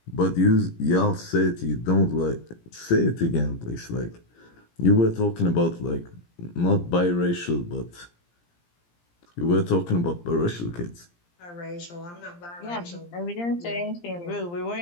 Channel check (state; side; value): late; right; 17 ms